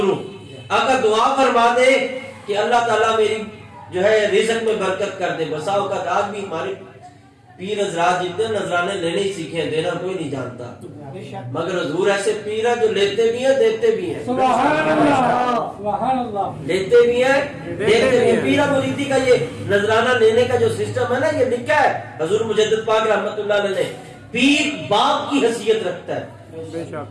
ہوں، اگر دعا فرما دے کہ اللہ تعالیٰ میری جو ہے رزق میں برکت کر دے۔ بسا اوقات آج بھی ہمارے پیر حضرات جتنے نذرانے لینے ہی سیکھے ہیں، دینا کوئی نہیں جانتا، مگر حضور ایسے پیر ہیں جو لیتے بھی ہیں دیتے بھی ہیں، سبحان اللہ سبحان اللہ، لیتے بھی ہیں دیتے بھی ہیں۔ پیرا مریدی کا یہ نذرانہ لینے کا جو سسٹم ہے نا، یہ لکھا ہے حضور مجدد پاک رحمت اللہ علیہ نے، پیر باپ کی حیثیت رکھتا ہے، بے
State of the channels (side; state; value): both; identical; correlation 1.00